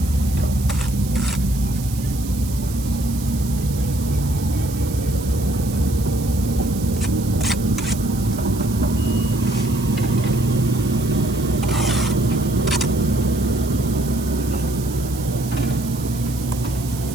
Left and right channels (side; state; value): right; noise; hiss, 14 dB below the sound